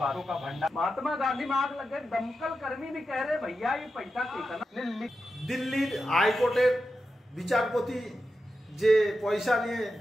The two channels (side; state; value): both; normal; correlation 0.89